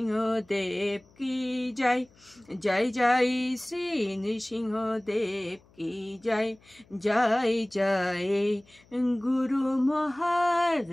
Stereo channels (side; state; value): left; noise; hum, 29 dB below the sound